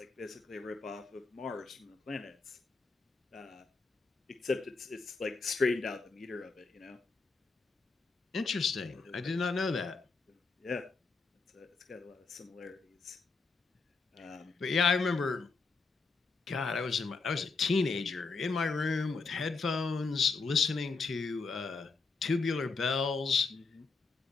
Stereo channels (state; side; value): quieter; right; 4.3 dB